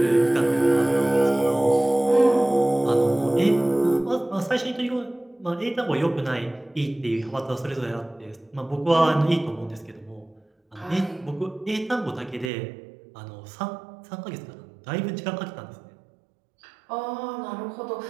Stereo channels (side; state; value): left; drops out; at 12.5 s